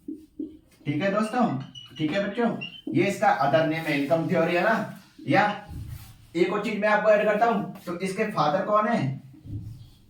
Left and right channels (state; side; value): identical; both; correlation 1.00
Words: ठीक है दोस्तों, ठीक है बच्चों, ये इसका अदर नेम है इनकम थ्योरी, है ना। या एक और चीज मैं आपको ऐड करता हूं, तो इसके फादर कौन है,